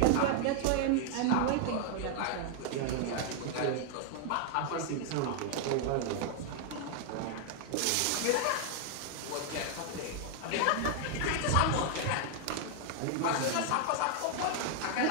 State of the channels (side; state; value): both; different; correlation 0.00